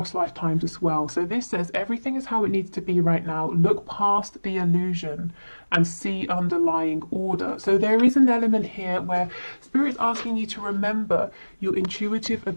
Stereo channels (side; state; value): both; inverted; correlation -1.00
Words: lifetimes as well. So this says everything is how it needs to be right now. Look past the illusion and see underlying order. So there is an element here where Spirit's asking you to remember your intuitive